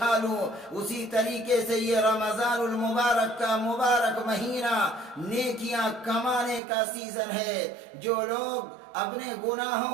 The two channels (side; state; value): left; drops out; at 6.6 s